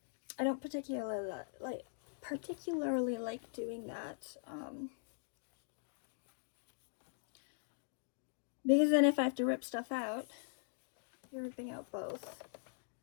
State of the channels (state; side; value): silent; right; digital silence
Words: don't particularly like doing that, because then if I have to rip stuff out, you're ripping out both.